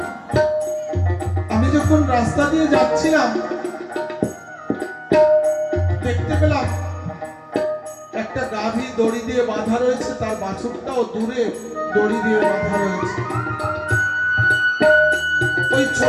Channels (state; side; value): identical; both; correlation 1.00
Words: আমি যখন রাস্তা দিয়ে যাচ্ছিলাম দেখতে পেলাম একটা গাভী দড়ি দিয়ে বাঁধা রয়েছে, তার বাছুরটাও দূরে দড়ি দিয়ে বাঁধা রয়েছে। ওই